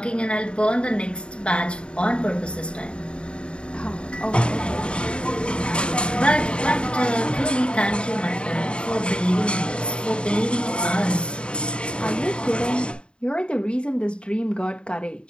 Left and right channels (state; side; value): late; right; 0.054 ms